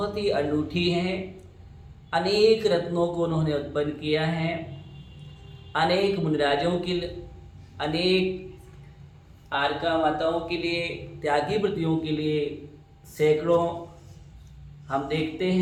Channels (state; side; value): identical; both; correlation 1.00